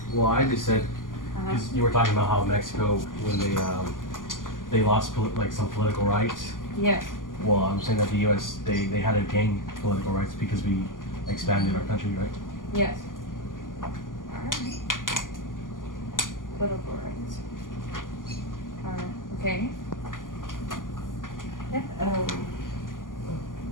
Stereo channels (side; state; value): right; late; 0.89 ms